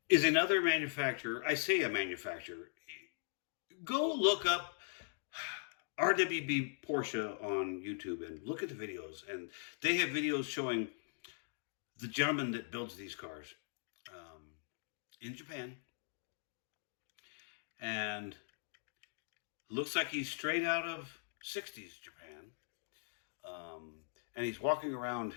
Is another manufacturer. I say a manufacturer. Go look up RWB Porsche on YouTube and look at the videos. And they have videos showing the gentleman that builds these cars in Japan. And looks like he's straight out of 60s Japan. And he's walking around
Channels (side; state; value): right; silent; digital silence